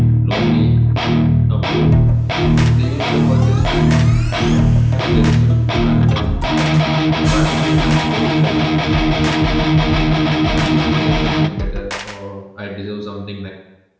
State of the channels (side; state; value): both; identical; correlation 1.00